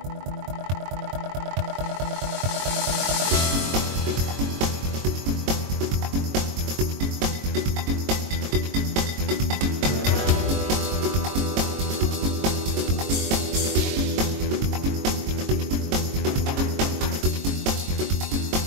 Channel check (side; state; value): left; late; 22 ms